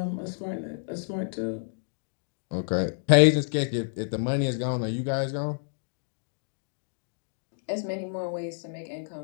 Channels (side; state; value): right; silent; digital silence